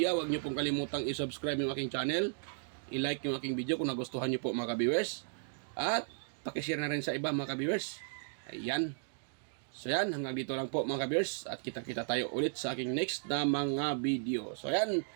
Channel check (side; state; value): left; silent; digital silence